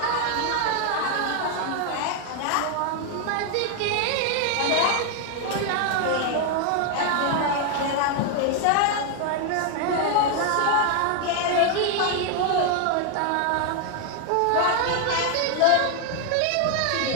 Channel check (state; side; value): different; both; correlation 0.01